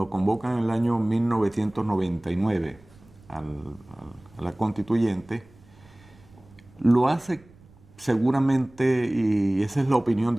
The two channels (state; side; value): noise; right; rumble, 26 dB below the sound